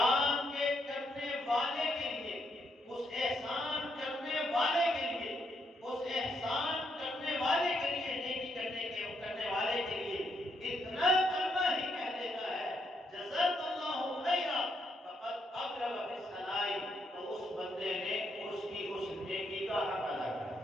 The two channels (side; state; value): both; normal; correlation 0.77